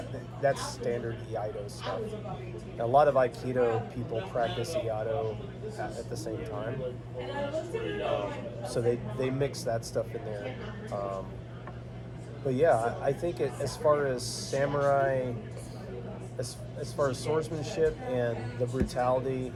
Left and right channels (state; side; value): identical; both; correlation 1.00